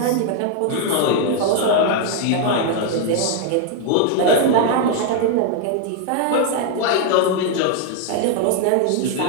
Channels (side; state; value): both; different; correlation 0.00